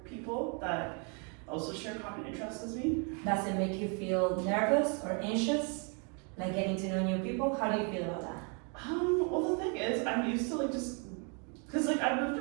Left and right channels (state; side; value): quieter; left; 37.4 dB